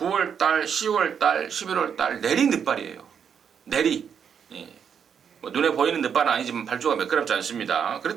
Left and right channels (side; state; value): left; quieter; 7.5 dB